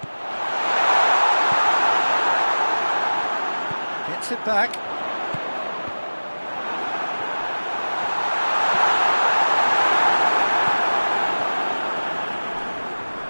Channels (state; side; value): inverted; both; correlation -1.00